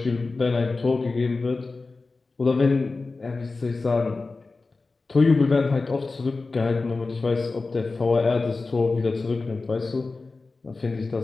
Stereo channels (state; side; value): quieter; right; 3.7 dB